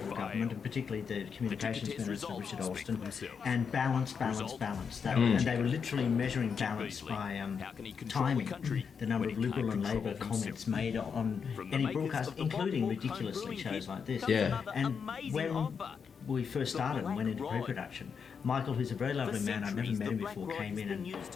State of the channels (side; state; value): right; quieter; 6.3 dB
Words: government, and particularly the Communications Minister, Richard Alston, and balance. And they were literally measuring balance by timing the number of Liberal and Labor comments made on any broadcast, including ridiculously shows like this. Yeah. And when we first started and went into pre-production, Michael, who's a very lovely man, I'd never met him before, came in and